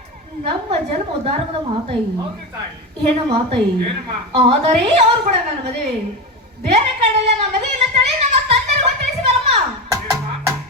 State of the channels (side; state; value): both; normal; correlation 0.18